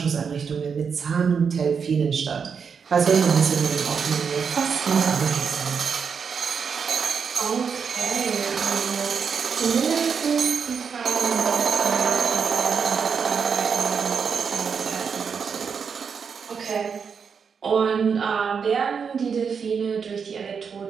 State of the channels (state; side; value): quieter; left; 6.3 dB